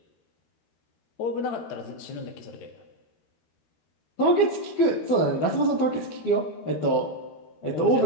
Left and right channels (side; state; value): right; late; 12 ms